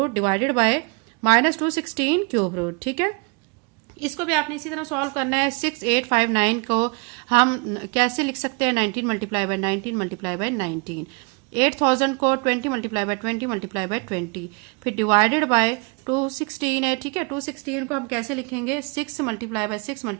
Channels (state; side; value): quieter; left; 32.6 dB